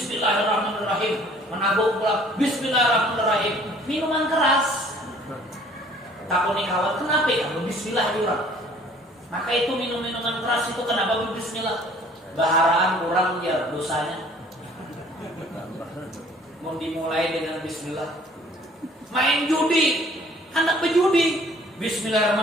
Menabung pula bismillahirrahmanirrahim. Minuman keras. Takut nih kawan, kenapa ya? Bismillah juga. Maka itu minum-minuman keras itu kenapa bismillah? Baharaan kurang ya dosanya. Mau dimulai dengan bismillah. Main judi, anak pejudi.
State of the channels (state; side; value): normal; both; correlation 0.55